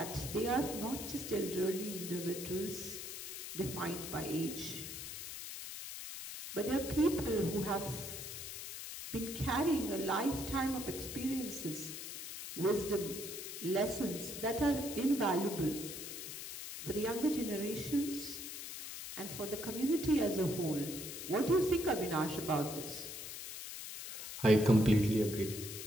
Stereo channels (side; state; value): left; noise; hiss, 8 dB below the sound